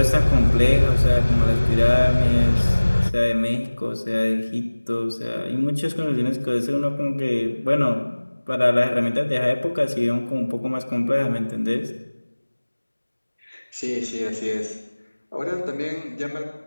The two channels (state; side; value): inverted; both; correlation -1.00